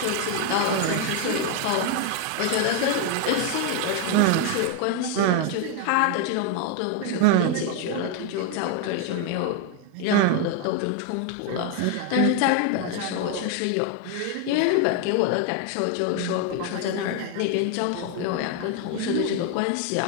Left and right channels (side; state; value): both; different; correlation 0.01